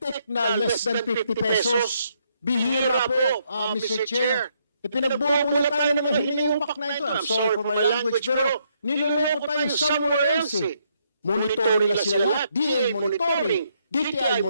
na less than 50 pesos. Bihira po, Mr. Chair. Pinagbubulat tayo ng hiniupak na ito. I'm sorry for my language, pero niloloko tayo somewhere else eh. Monitoring na sila lahat. DA monitoring, DTI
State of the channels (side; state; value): both; inverted; correlation -0.74